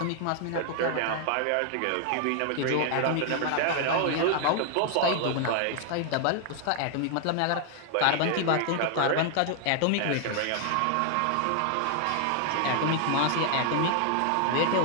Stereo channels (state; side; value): different; both; correlation 0.00